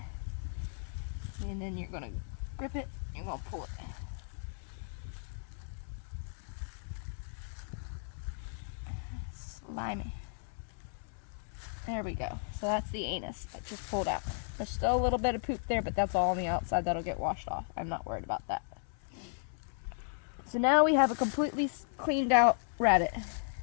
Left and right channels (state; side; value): silent; right; 54 dB below the other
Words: and then you're going to grip it, and you're going to pull it. Slimy. There we go. So that's the anus that just pulled out. There's still a little bit of poop there, but that's all on the outside. That'll get washed off. I'm not worried about that. So now we have a completely cleaned out rabbit.